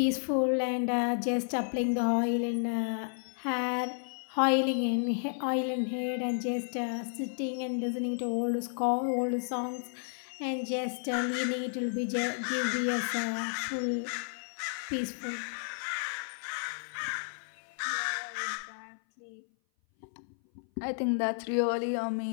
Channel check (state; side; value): silent; right; 56 dB below the other